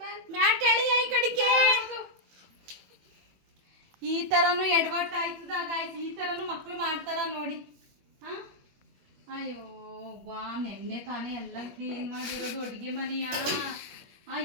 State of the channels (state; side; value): late; left; 21 ms